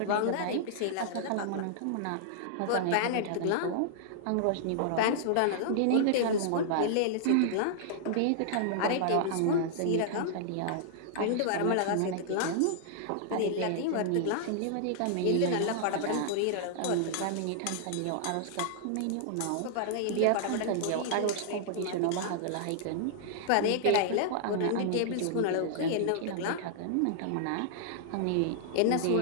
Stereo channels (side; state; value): both; different; correlation -0.01